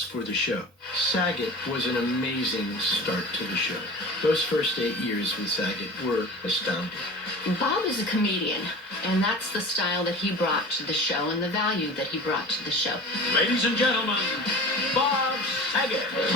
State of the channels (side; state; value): both; normal; correlation 0.36